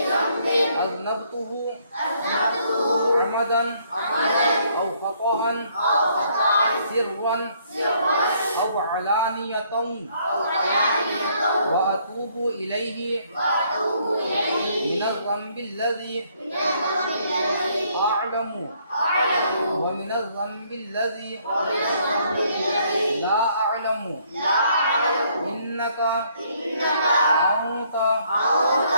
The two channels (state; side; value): inverted; both; correlation -0.67